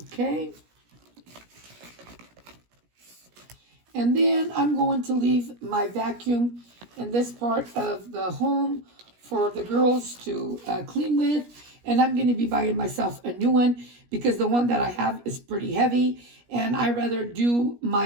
Okay. And then I'm going to leave my vacuum in this part of the home for the girls to clean with. And I'm going to be buying myself a new one, because the one that I have is pretty heavy. And I rather do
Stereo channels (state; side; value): late; left; 17 ms